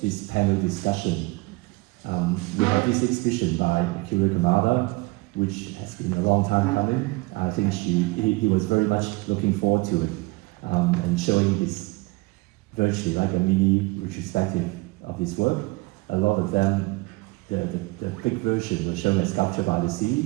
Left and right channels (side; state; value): left; quieter; 23.7 dB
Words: this panel discussion. We have this exhibition by Akira Kamada, which has been a long time coming. I think he was very much looking forward to it and showing his virtually like a mini retrospective of his work. A lot of them, the big version was shown as Sculpture by the